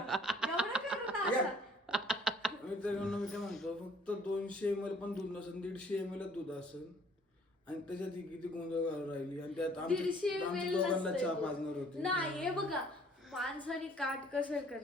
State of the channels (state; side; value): normal; both; correlation 0.57